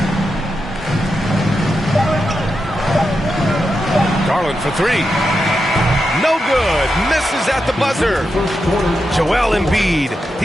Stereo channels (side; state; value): both; normal; correlation 0.87